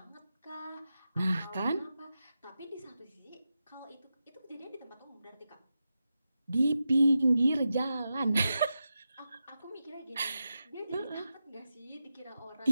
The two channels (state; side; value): inverted; both; correlation -0.90